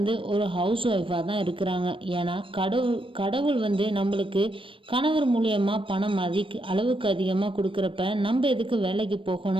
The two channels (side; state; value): left; late; 0.25 ms